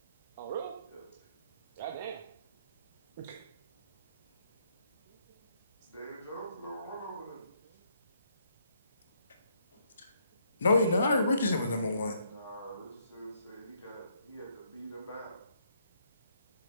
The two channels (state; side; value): inverted; both; correlation -0.71